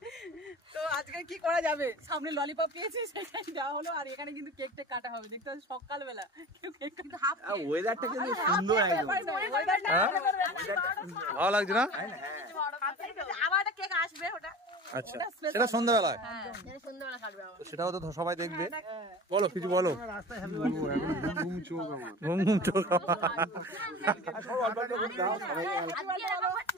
তো আজকে কি করা যাবে, সামনে ললিপপ পেয়েছি সেটাই দেওয়া হলো, আর এখানে কিন্তু কেক টেক কাটা হবে। দেখতে পাচ্ছি সকালবেলা কেউ কেক কাটা, হাফ ওয়েদারটা কিন্তু সুন্দর একদম। ভালো লাগছে না? আবার একটা কেক আসবে, ওটা আচ্ছা সেটা সন্ধ্যাবেলায়, সন্ধ্যাবেলা কাটবে। সেটাও তো সবাই দেখবে। বলো কিছু বলো। ঘুম ঘুম চোখ।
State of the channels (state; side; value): normal; both; correlation 0.36